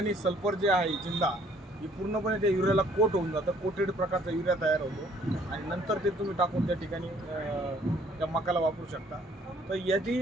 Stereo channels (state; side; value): normal; both; correlation 0.60